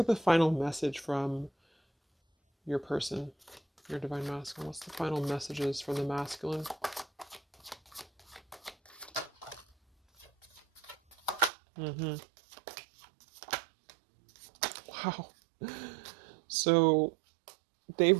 the final message from your person, your divine masculine. What's the final messages from the masculine? Mm-hmm. Wow. So they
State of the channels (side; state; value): left; drops out; at 11.5 s